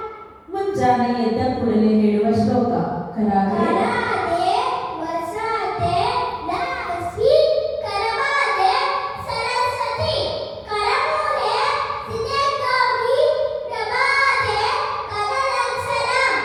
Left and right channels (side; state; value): both; identical; correlation 1.00